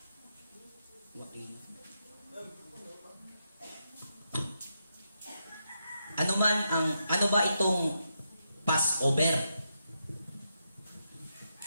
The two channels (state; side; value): inverted; both; correlation -0.83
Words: Ano ba itong Passover?